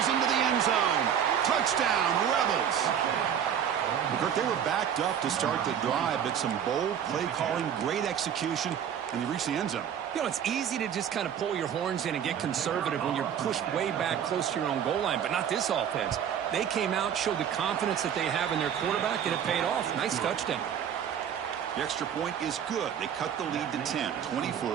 into the end zone. Touchdown, Rebels. Kirk, they were backed up to start the drive, but some bold play calling, great execution, and they reached the end zone. You know, it's easy to just kind of pull your horns in and get conservative when you're pushed way back close to your own goal line, but not this offense. They came out, showed the confidence that they have in their quarterback, and it paid off. Nice touchdown. The extra point is good. They cut the lead to 10, 24-14. 24,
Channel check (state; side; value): quieter; left; 8.8 dB